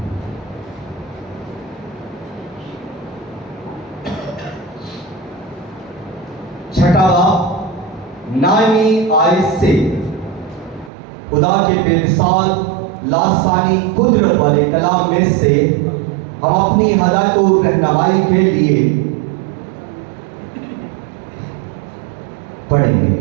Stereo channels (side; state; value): left; drops out; at 10.9 s